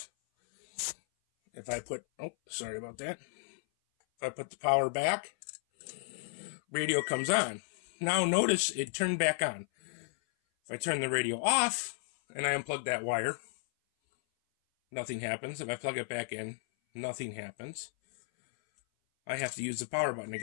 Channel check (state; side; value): silent; right; 55 dB below the other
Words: If I put, oh, sorry about that. If I put the power back, radio comes on. Now notice it turned back on. If I turn the radio off and I unplug that wire, nothing happens. If I plug it back in, nothing happens. I have to use the power button